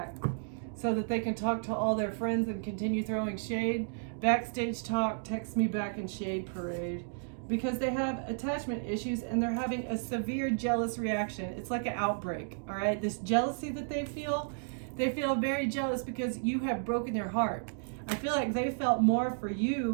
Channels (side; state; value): left; silent; digital silence